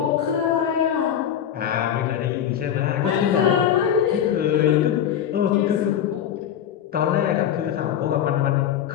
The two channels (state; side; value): quieter; right; 9.7 dB